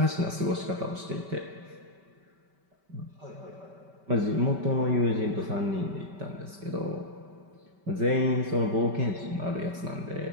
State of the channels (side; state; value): left; late; 5.2 ms